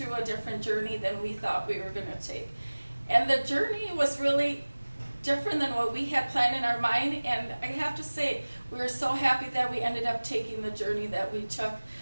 a different journey than we thought we were going to take. And the journey was really different than what we had planned in our mind, and I have to say, we were so happy that we ended up taking the journey that we took.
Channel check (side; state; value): both; inverted; correlation -1.00